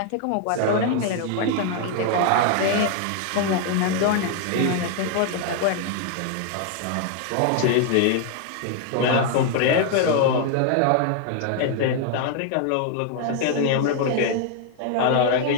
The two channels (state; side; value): different; both; correlation 0.00